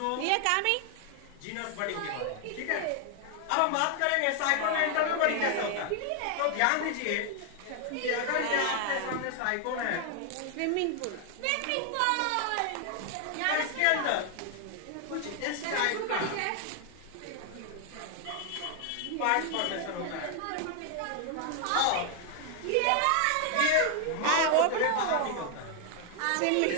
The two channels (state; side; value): different; both; correlation 0.00